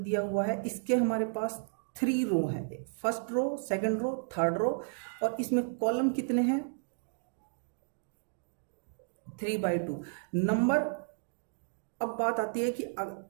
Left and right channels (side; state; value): left; silent; digital silence